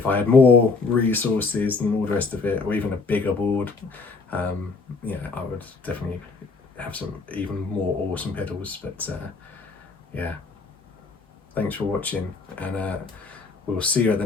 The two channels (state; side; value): quieter; right; 4.1 dB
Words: I had more resources and all the rest of it, or even a bigger board, you know, I would definitely have some even more awesome pedals. But yeah, thanks for watching, and we'll see you at